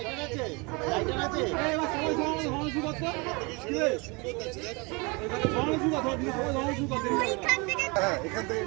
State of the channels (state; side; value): quieter; left; 28.4 dB